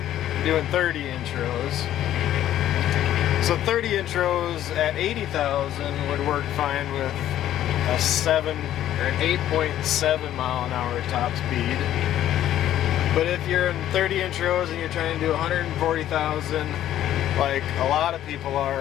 doing 30-inch rows. So 30-inch rows at 80,000 would work fine with a 7 or an 8.7 mile an hour top speed. But if you're in 30-inch rows and you're trying to do 140,000, like a lot of people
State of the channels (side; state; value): right; quieter; 12.2 dB